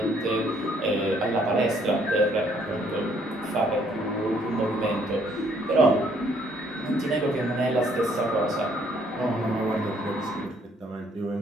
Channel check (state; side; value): normal; both; correlation 0.66